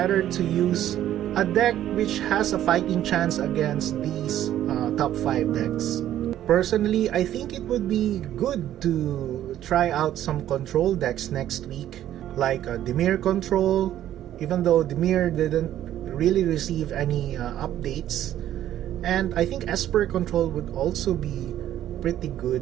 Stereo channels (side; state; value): left; quieter; 12.0 dB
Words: to use a deck which has a fighting chance against these top 5 decks. Personally, I think it would be good to try out some control decks next week, like Dimir Control, even though Dimir didn't really receive any updates. And I think Esper Control would also be pretty good.